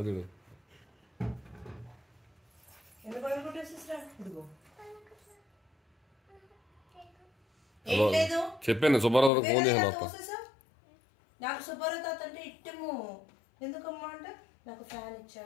చెప్పాను. సుబ్బారావు ఫోన్ చేశాను. నాకు సుబ్బారావు తాత అంటే ఇష్టము. ఎందుకమ్మా అంటే నాకు ఫ్యాన్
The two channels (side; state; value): right; drops out; at 9.3 s